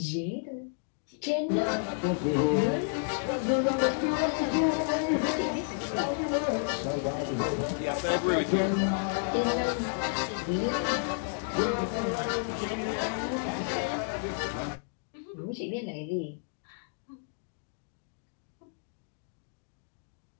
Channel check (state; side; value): silent; right; digital silence